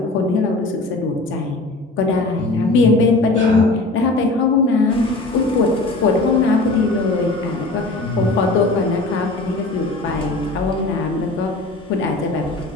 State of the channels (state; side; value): quieter; right; 3.0 dB